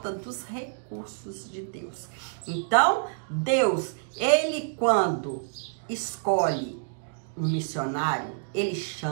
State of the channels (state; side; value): silent; left; digital silence